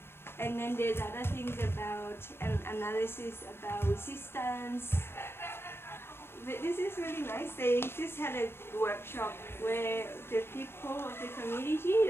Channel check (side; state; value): right; late; 0.11 ms